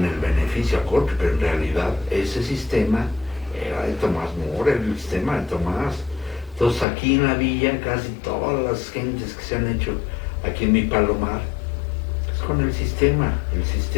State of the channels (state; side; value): drops out; right; at 6.9 s